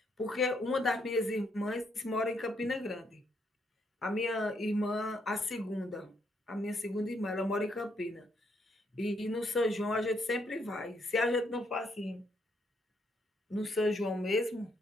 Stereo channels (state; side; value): normal; both; correlation 0.74